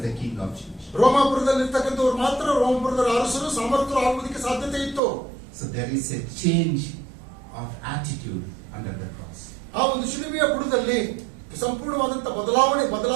the king of Jews. ರೋಮಾಪುರದಲ್ಲಿರ್ತಕ್ಕಂಥವ್ರು ಮಾತ್ರ ರೋಮಾಪುರದ ಅರಸರು ಸಮರ್ಥರು ಆಗುವುದಕ್ಕೆ ಸಾಧ್ಯತೆ ಇತ್ತು. So there is a change of attitude under the cross. ಆ ಒಂದು ಶಿಲುಬೆಯ ಬುಡದಲ್ಲಿ ಸಂಪೂರ್ಣವಾದಂತ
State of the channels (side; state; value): left; drops out; at 5.0 s